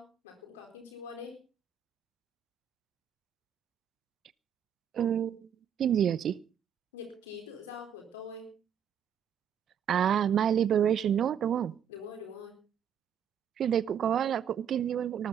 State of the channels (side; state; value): left; quieter; 8.5 dB